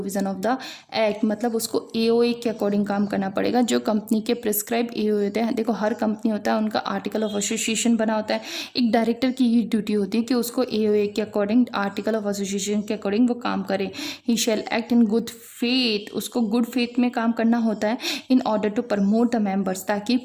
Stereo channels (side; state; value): both; identical; correlation 1.00